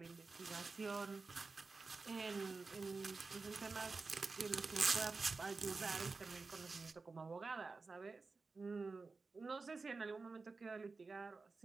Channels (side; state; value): left; quieter; 4.1 dB